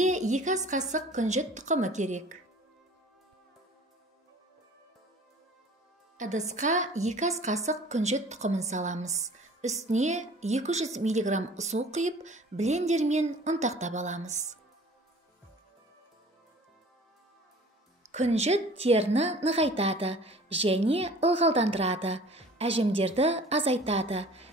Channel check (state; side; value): normal; both; correlation 0.47